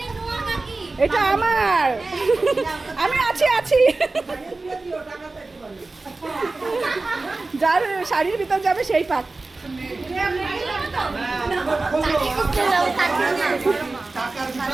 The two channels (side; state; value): left; quieter; 3.4 dB